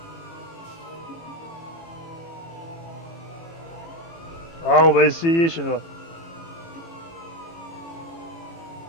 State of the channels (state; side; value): late; right; 18 ms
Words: Ah, on va essayer chez nous.